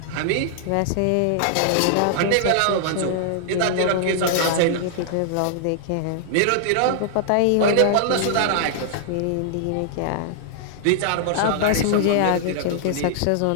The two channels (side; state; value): both; different; correlation -0.01